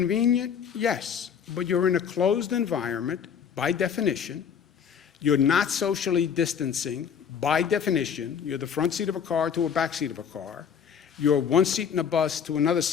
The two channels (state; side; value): quieter; right; 7.4 dB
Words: Yes, but you're in a closed environment by definition. You're not socially distancing by definition. You're the front seat of a car to a back seat of a car. You're one seat in a bus to another